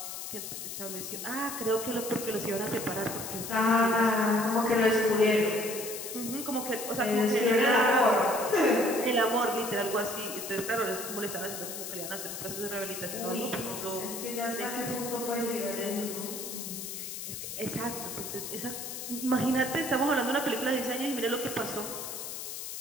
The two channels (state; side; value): noise; left; hiss, 7 dB below the sound